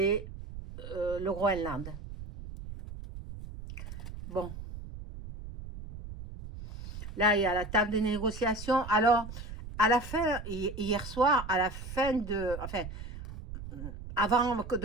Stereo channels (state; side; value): noise; right; rumble, 11 dB below the sound